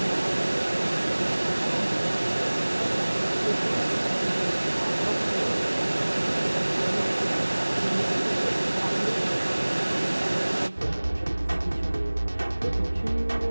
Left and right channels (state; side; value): inverted; both; correlation -1.00